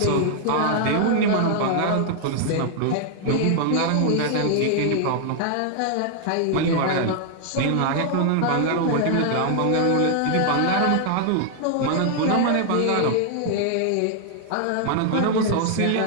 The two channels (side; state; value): both; different; correlation 0.00